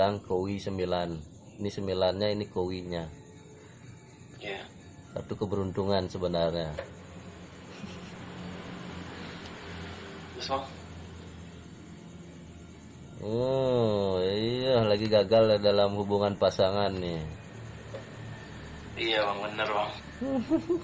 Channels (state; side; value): identical; both; correlation 1.00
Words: kowi 9. Ini 9-nya, ini kowinya. Iya. Kartu keberuntungan sebenarnya. Terus bang. Oh iya, lagi gagal dalam hubungan pasangan nih. Iya bang, bener bang.